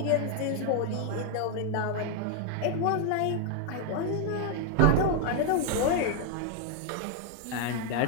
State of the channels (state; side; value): different; both; correlation 0.00